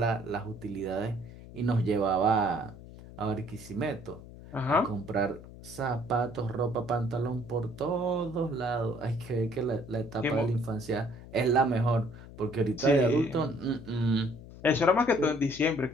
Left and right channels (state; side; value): noise; left; hum, 16 dB below the sound